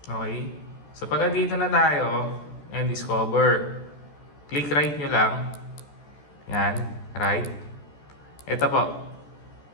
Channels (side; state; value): right; late; 14 ms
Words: Okay? So pag dito na tayo and discover, click right nyo lang. Yan, right. Ito po.